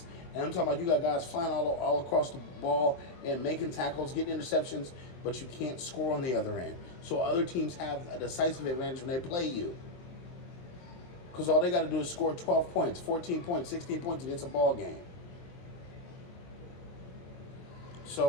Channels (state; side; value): late; right; 23 ms